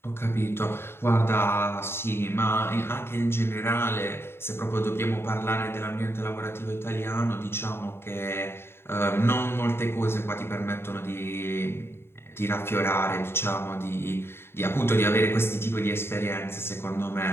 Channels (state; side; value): late; right; 0.11 ms